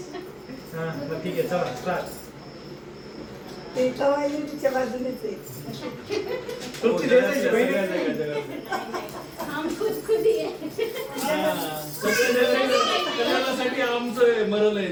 हा बरं, ठीक आहे चला स्टार्ट. ते कवायली तिच्या बाजूनेच आहे तुमची द्यायची बहिणी. हम खुद खुद ही आहे कल्याणासाठी आमचं मरल आहे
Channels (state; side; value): identical; both; correlation 1.00